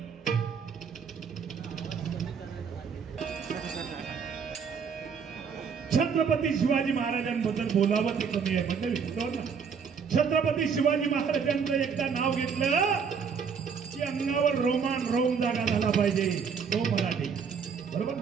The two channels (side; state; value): left; quieter; 6.3 dB